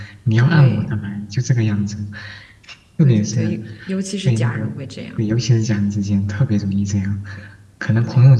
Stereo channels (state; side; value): identical; both; correlation 1.00